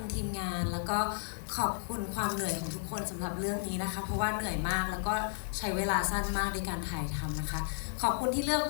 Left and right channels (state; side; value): silent; right; 56 dB below the other